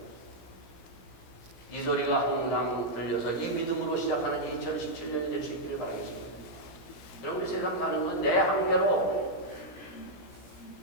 이 소리가 항상 들려서 이 믿음으로 시작하는 2017년이 될 수 있기를 바라겠습니다. 그럼 우리 세상 사는 건 내 한계로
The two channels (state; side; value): late; right; 17 ms